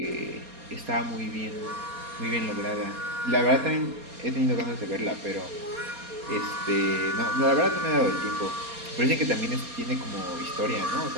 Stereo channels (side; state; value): left; late; 4.2 ms